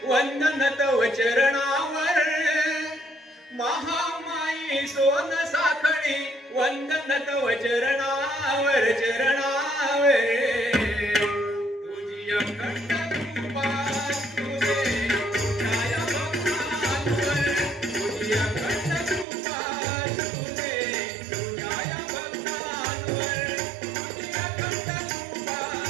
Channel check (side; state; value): left; drops out; at 19.2 s